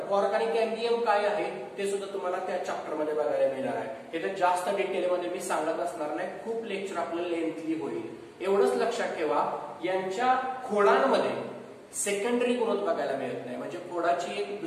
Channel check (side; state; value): both; identical; correlation 1.00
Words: कॉर्क आणि कॅम्बियम काय आहे ते सुद्धा तुम्हाला त्या चॅप्टर मध्ये बघायला मिळणार आहे. हे जास्त डिटेलमध्ये मी सांगत असणार नाही, खूप लेक्चर आपलं लेंथली होईल. एवढंच लक्षात ठेवा, यांच्या खोडांमध्ये सेकंडरी ग्रोथ बघायला मिळत नाही. म्हणजे खोडाची एक